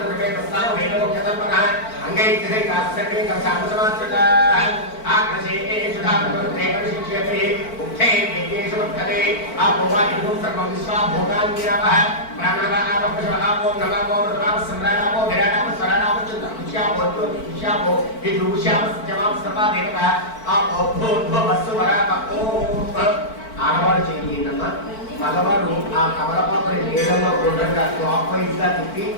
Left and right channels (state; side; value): late; right; 4.5 ms